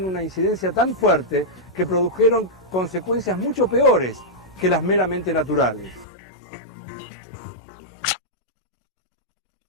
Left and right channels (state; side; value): drops out; right; at 6.1 s